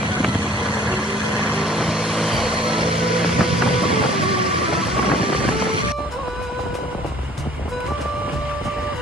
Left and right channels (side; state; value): both; normal; correlation 0.54